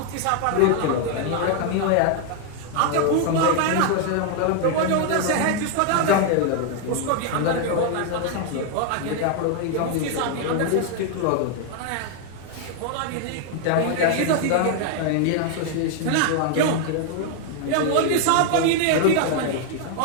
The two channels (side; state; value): both; different; correlation 0.00